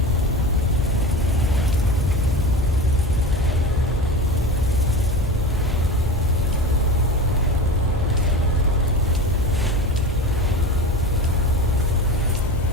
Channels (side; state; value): both; normal; correlation 0.30